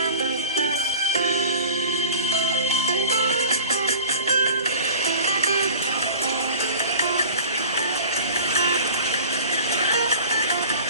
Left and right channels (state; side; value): inverted; both; correlation -0.40